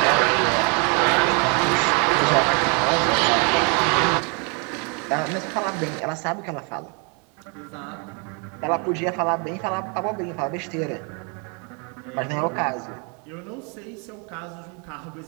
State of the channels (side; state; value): left; quieter; 35.0 dB